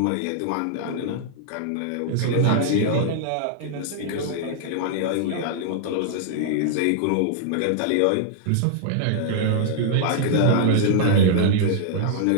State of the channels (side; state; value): both; different; correlation -0.01